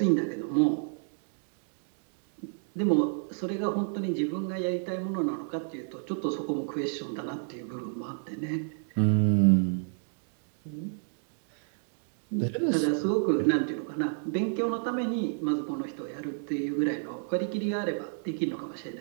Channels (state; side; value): silent; left; digital silence